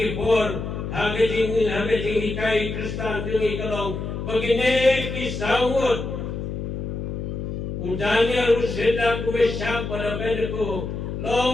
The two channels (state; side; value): noise; left; hum, 5 dB below the sound